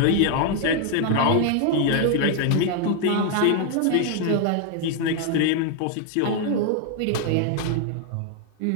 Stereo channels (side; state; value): both; different; correlation 0.00